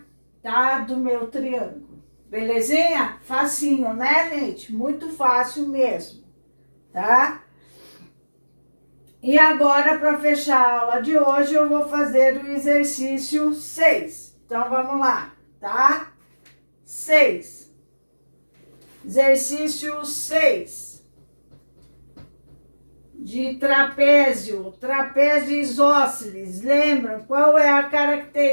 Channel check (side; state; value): both; inverted; correlation -1.00